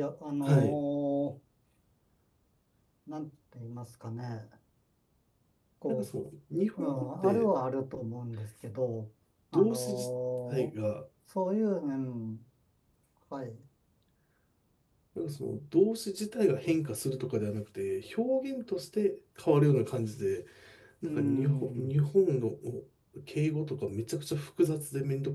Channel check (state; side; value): identical; both; correlation 1.00